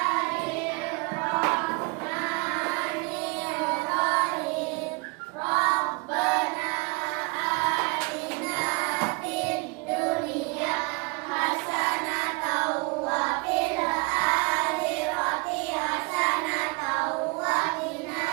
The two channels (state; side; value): quieter; left; 30.2 dB